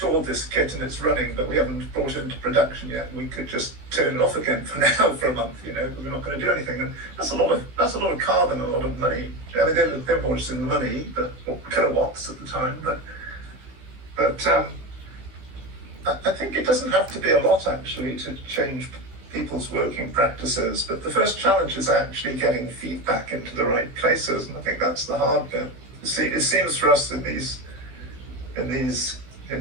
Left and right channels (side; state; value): left; late; 16 ms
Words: this kit and it's running, but we haven't brought it into production yet. We could just turn it off again for now for a month, you know, because we're not going to do anything. And that's a lot of carbon, a lot of money. I mean, they're more just in money, but kilowatts at the time. But I think it doesn't have to be a lot actually to change people's working practices. But the first challenge is actually getting feedback into the right places, and I think that's the hard bit. See, it seems for us in these